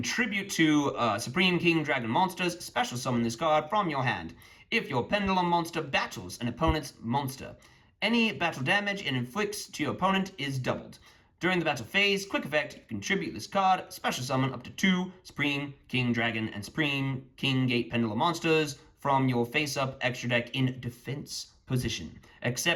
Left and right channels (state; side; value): identical; both; correlation 1.00